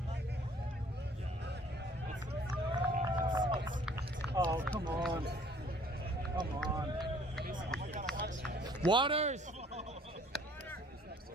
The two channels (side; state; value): both; normal; correlation 0.57